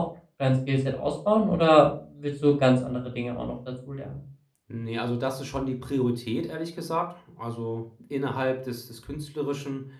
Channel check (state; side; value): identical; both; correlation 1.00